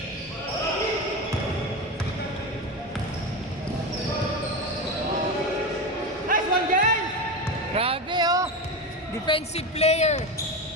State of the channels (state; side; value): normal; both; correlation 0.20